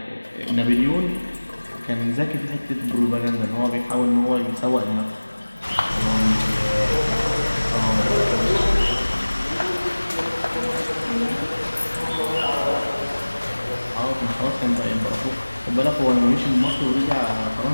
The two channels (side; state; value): both; inverted; correlation -1.00